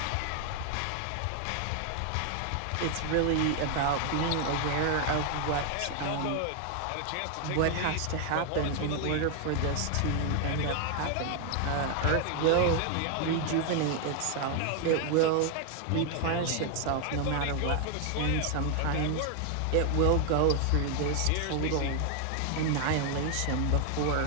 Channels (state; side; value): different; both; correlation 0.00